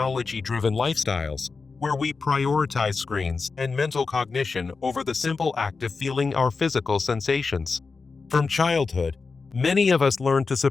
lifestyles, where we prioritize screens and mental cognition over the simple act of feeling our physical sensations. From childhood, many of us learn to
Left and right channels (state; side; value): quieter; right; 4.5 dB